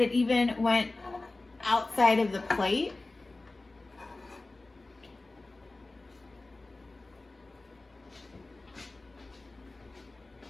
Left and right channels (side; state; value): right; quieter; 3.1 dB